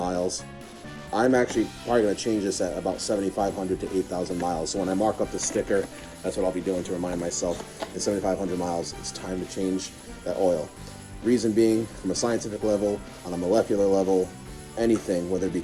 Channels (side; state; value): both; identical; correlation 1.00